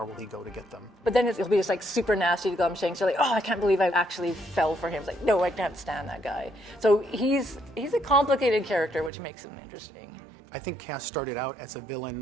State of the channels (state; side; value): drops out; left; at 9.1 s